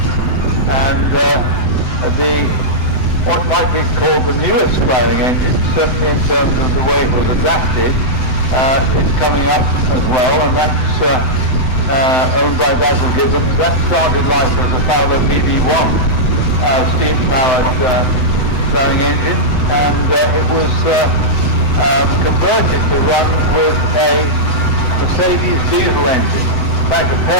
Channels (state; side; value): late; right; 7.8 ms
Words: and what might be called the newest ploughing engine, certainly in terms of the way it was adapted, is coming up as well, and that's owned by Basil Gibbons. That started life as a Fowler BB1 steam-powered ploughing engine, and it was converted to run with a Mercedes diesel engine. In fact, a